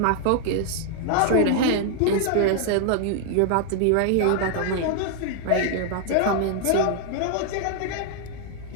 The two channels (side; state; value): both; different; correlation 0.00